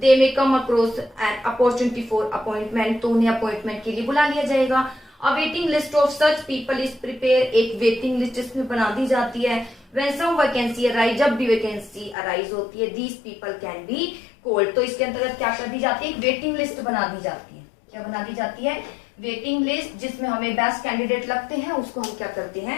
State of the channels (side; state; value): right; drops out; at 12.2 s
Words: may come across an opportunity for appointment, तो उन्हें अपॉइंटमेंट के लिए बुला लिया जाएगा। A waiting list of such people is prepared, एक वेटिंग लिस्ट इसमें बना दी जाती है। When some vacancy arise, जब भी वैकेंसी अराइज होती है, these people can be called, तो इसके अंतर्गत क्या कर दी जाती है? एक वेटिंग लिस्ट बना दी जाती है। क्या बना दी जाती है? वेटिंग लिस्ट, जिसमें हमें बेस्ट कैंडिडेट लगते हैं, उसको हम क्या करते